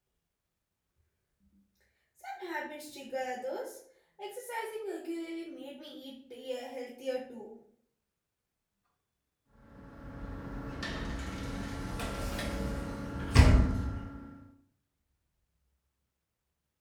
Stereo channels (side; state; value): both; identical; correlation 1.00